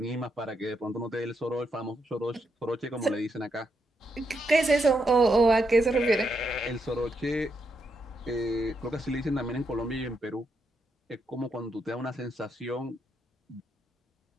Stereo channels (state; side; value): normal; both; correlation 0.81